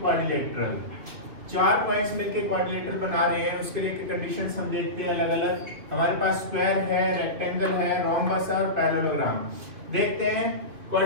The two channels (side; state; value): left; late; 2.9 ms